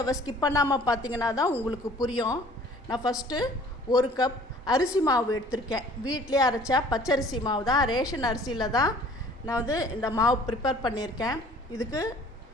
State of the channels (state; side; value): normal; both; correlation 0.52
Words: ஸ்கிப் பண்ணாமல் பார்த்தீங்கன்னா தான் உங்களுக்கு புரியும். நான் ஃபஸ்ட்டு 1 கப் அரிசி மாவு எடுத்திருக்கேன். வீட்டிலே அரைச்சா பச்சரிசி மாவு தான், ரேஷன் அரிசியில் தான் நான் இந்த மாவு ப்ரிப்பேர் பண்ணியிருக்கேன். இதுக்கு